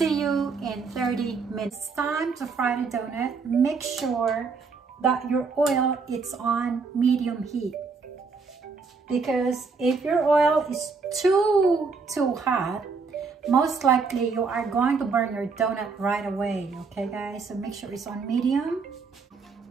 you in 30 minutes. It's time to fry the donut. Make sure that your oil is on medium heat, because if your oil is too hot, most likely you are going to burn your donut right away. Okay guys, so make sure it's on medium.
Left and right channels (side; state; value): left; quieter; 4.7 dB